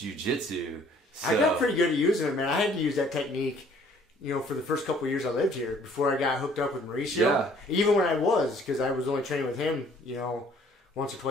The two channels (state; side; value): normal; both; correlation 0.58